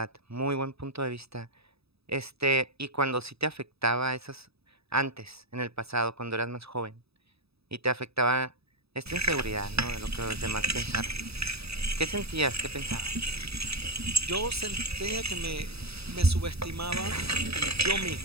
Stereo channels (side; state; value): left; late; 0.78 ms